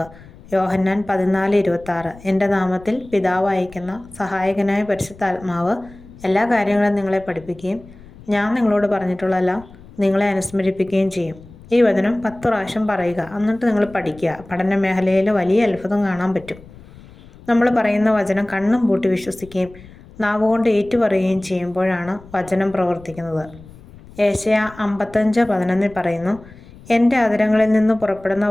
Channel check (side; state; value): left; noise; rumble, 21 dB below the sound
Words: യോഹന്നാൻ 14:26 എൻ്റെ നാമത്തിൽ പിതാവ് അയക്കുന്ന സഹായകനായ പരിശുദ്ധാത്മാവ് എല്ലാ കാര്യങ്ങളും നിങ്ങളെ പഠിപ്പിക്കുകയും ഞാൻ നിങ്ങളോട് പറഞ്ഞിട്ടുള്ളതെല്ലാം നിങ്ങളെ അനുസ്മരിപ്പിക്കുകയും ചെയ്യും. ഈ വചനം 10 പ്രാവശ്യം പറയുക, എന്നിട്ട് നിങ്ങൾ പഠിക്കുക. പഠന മേഖലയിൽ വലിയ അത്ഭുതം കാണാൻ പറ്റും. നമ്മൾ പറയുന്ന വചനം കണ്ണും പൂട്ടി വിശ്വസിക്കുകയും നാവുകൊണ്ട് ഏറ്റുപറയുകയും ചെയ്യുമ്പോഴാണ് വചനം പ്രവർത്തിക്കുന്നത്. യെശയ്യാ 55:11 പറയുന്നു, എൻ്റെ അധരങ്ങളിൽ നിന്ന് പുറപ്പെടുന്ന